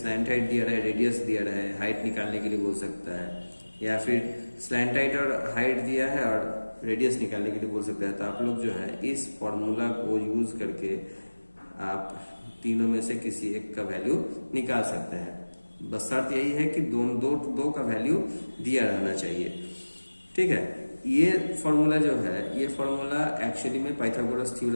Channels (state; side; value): inverted; both; correlation -1.00